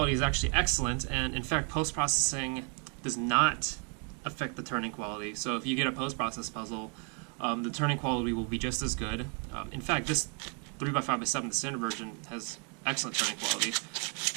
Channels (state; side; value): quieter; left; 38.6 dB